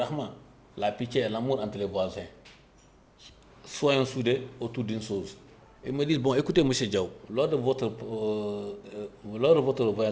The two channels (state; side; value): identical; both; correlation 1.00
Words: la pitié et l'amour entre les voisins, soyons soudés autour d'une chose. Ils me disent, bon, écoutez, M. Diaw, lors de votre